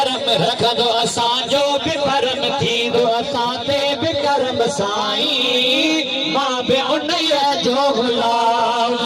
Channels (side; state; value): both; identical; correlation 1.00